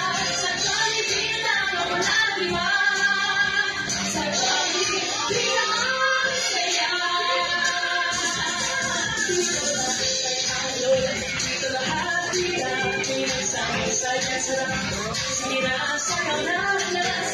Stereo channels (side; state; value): both; identical; correlation 1.00